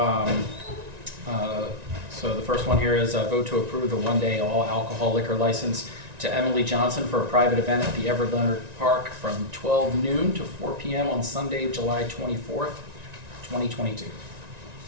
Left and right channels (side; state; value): left; late; 1.9 ms